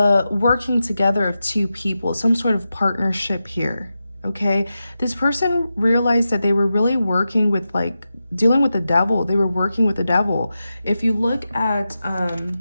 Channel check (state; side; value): inverted; both; correlation -0.91